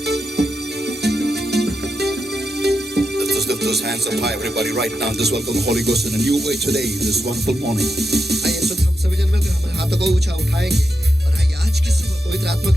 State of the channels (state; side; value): normal; both; correlation 0.86